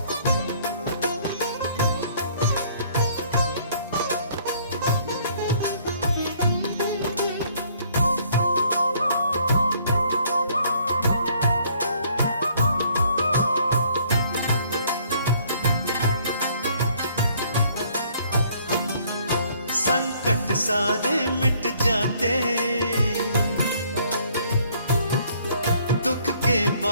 संकट सारे मिट जाते, दुख के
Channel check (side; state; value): both; inverted; correlation -0.61